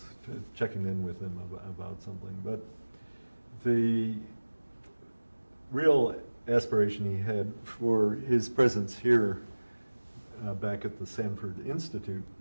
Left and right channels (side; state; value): both; inverted; correlation -1.00